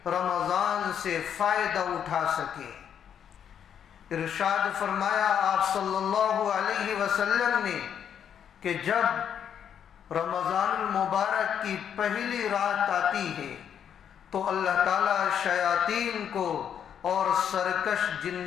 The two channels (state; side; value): quieter; right; 8.6 dB